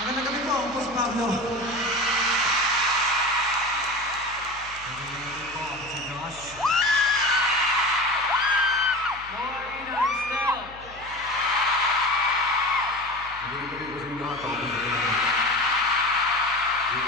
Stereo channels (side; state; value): left; noise; hum, 21 dB below the sound